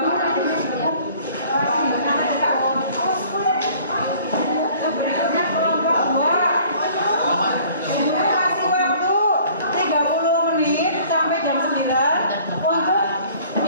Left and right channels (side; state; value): both; inverted; correlation -0.53